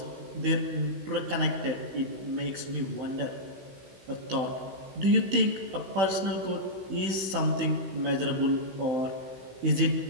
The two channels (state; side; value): late; left; 16 ms